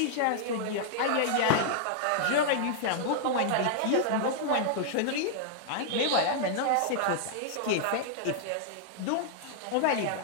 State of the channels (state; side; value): different; both; correlation -0.01